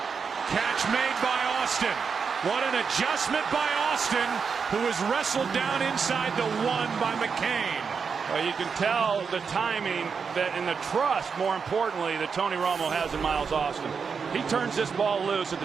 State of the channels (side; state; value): left; quieter; 5.8 dB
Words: catch made by Austin. What an adjustment by Austin, who was wrestled down inside the 1 by McCain. Well, you can tell the timing that, and the trust, more importantly, that Tony Romo has in Miles Austin. He turns this ball loose at the